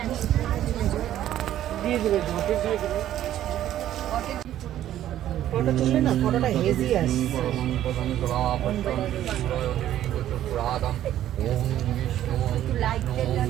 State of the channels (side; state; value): left; quieter; 12.2 dB